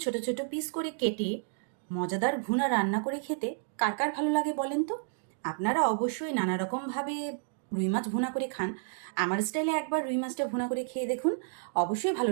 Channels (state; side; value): silent; left; digital silence